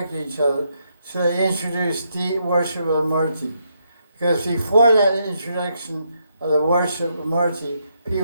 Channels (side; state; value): both; inverted; correlation -0.78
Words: to each other, so they introduced the worship of Murti. Because before that introduction of the worship of Murti,